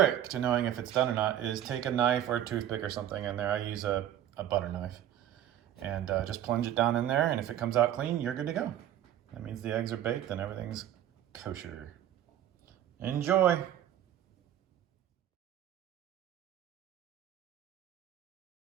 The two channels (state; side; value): quieter; left; 11.4 dB